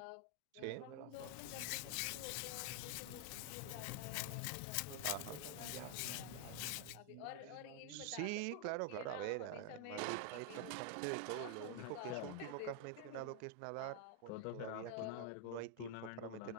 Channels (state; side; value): different; both; correlation 0.00